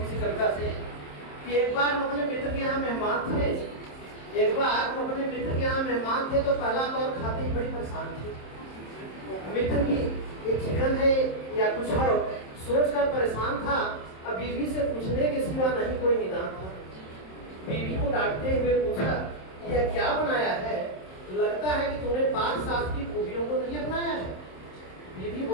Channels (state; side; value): late; right; 27 ms